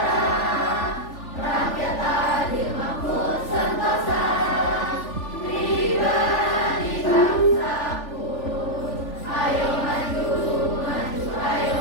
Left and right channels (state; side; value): late; right; 3.4 ms